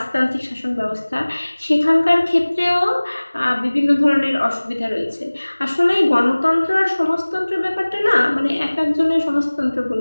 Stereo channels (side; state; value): both; inverted; correlation -1.00